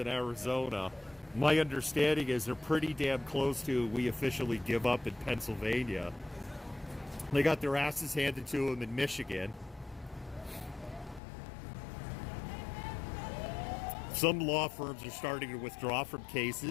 Arizona. My understanding is they're pretty damn close to we officially give up in Pennsylvania. They got their asses handed to them in Michigan. Some law firms are starting to withdraw from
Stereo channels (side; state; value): right; drops out; at 11.2 s